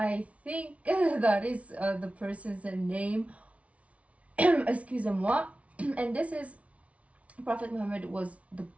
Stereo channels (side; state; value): left; late; 0.065 ms